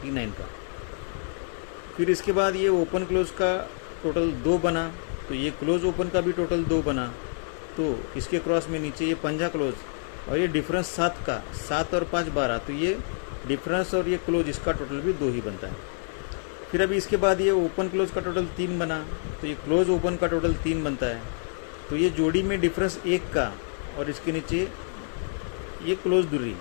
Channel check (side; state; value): right; silent; 58 dB below the other